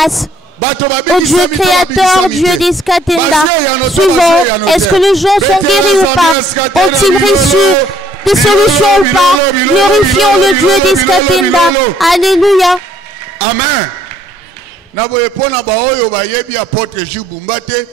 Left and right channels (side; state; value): both; normal; correlation 0.64